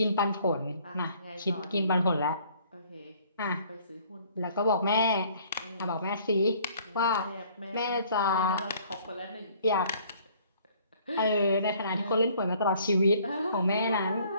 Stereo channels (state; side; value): inverted; both; correlation -0.58